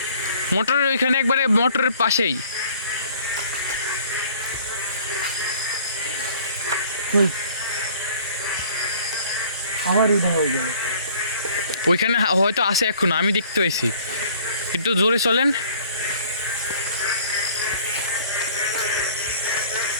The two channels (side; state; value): both; inverted; correlation -0.53